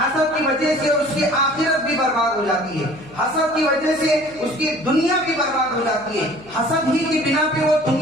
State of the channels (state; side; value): noise; left; hum, 23 dB below the sound